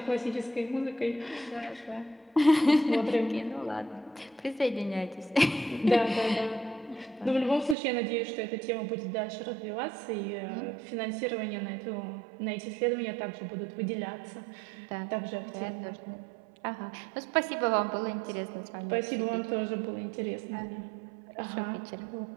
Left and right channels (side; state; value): left; drops out; at 7.8 s